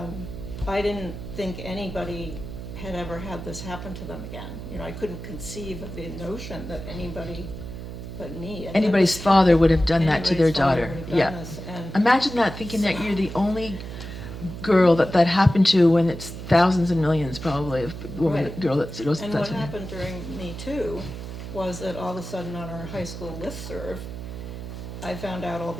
I didn't think anybody had ever had this happen to them again. I couldn't conceive of the notion that anybody but me. Anybody's father would have done that to their daughter. Yeah. And Imagine that, thinking that you're the only girl that happened to, when it's thousands and millions probably of girl that goes. And what happened during Me Too was that all of a sudden on our high school listserv, I found out all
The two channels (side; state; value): right; noise; hum, 10 dB below the sound